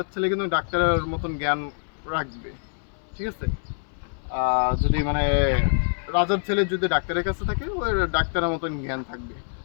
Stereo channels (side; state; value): right; silent; 61 dB below the other